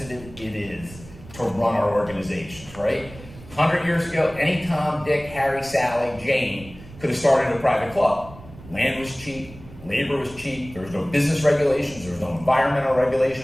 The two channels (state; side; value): noise; right; rumble, 18 dB below the sound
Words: it is to run our organizations, right? 100 years ago, any Tom, Dick, Harry, Sally, Jane could have started a private club. Land was cheap, labor was cheap, there was no business regulations, there was no environmental